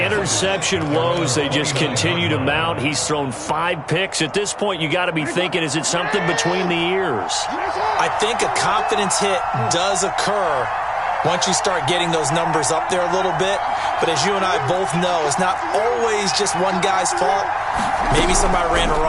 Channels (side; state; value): both; identical; correlation 1.00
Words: interception woes, they just continue to mount. He's thrown 5 picks. At this point, you got to be thinking, is it something between the ears? I think a confidence hit does occur once you start getting those numbers up there a little bit. But as you and I both know, it's not always just one guy's fault. Maybe somebody ran a